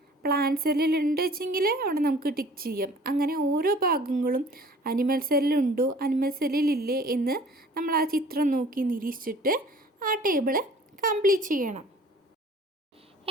പ്ലാന്റ് സെല്ലിലുണ്ട് വെച്ചെങ്കിൽ അവിടെ നമുക്ക് ടിക്ക് ചെയ്യാം. അങ്ങനെ ഓരോ ഭാഗങ്ങളും അനിമൽ സെല്ലിലുണ്ടോ അനിമൽ സെല്ലിലില്ലേ എന്ന് നമ്മൾ ആ ചിത്രം നോക്കി നിരീക്ഷിച്ചിട്ട് ആ ടേബിൾ കംപ്ലീറ്റ് ചെയ്യണം.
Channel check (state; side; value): normal; both; correlation 0.50